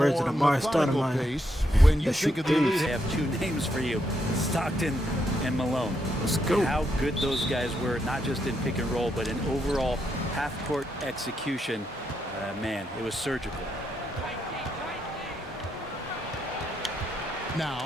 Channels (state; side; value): normal; both; correlation 0.79